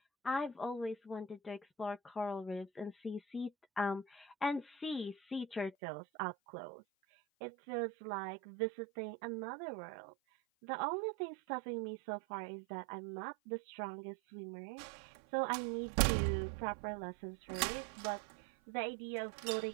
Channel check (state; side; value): drops out; left; at 5.7 s